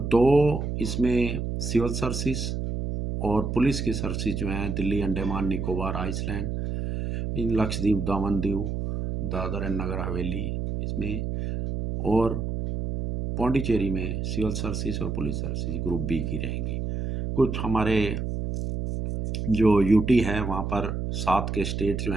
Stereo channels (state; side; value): noise; right; hum, 3 dB below the sound